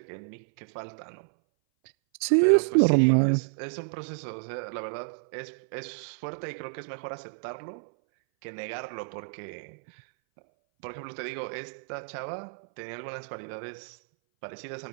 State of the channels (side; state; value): left; silent; 58 dB below the other